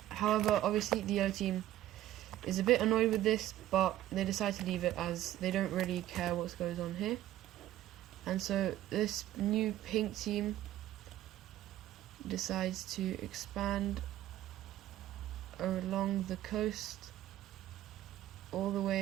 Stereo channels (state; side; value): quieter; left; 13.6 dB